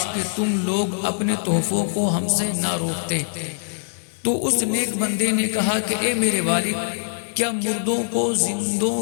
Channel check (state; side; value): silent; right; 64 dB below the other